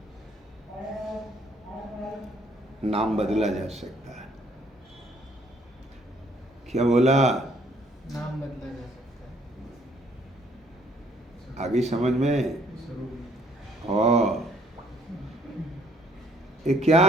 नाम बदला जा सकता है। क्या बोला? नाम बदला जा सकता है। आगे समझ में? और ये क्या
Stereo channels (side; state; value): both; normal; correlation 0.64